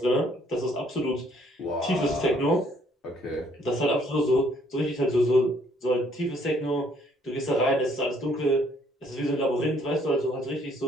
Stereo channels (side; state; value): both; normal; correlation 0.65